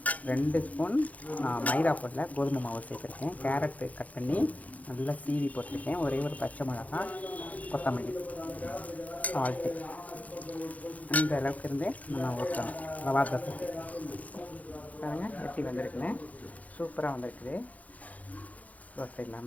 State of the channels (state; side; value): late; right; 0.072 ms